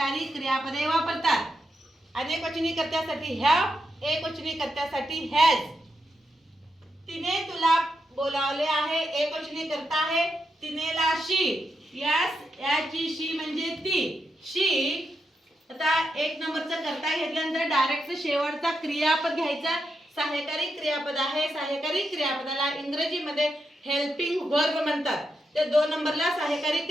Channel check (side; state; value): both; normal; correlation 0.84